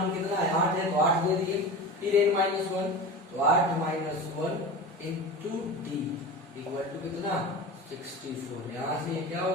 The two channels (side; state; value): both; normal; correlation 0.30